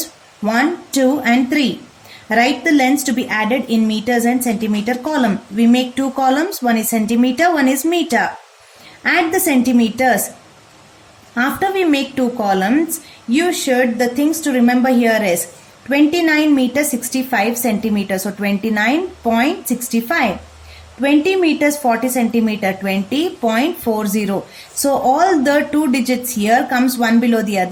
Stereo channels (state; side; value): identical; both; correlation 1.00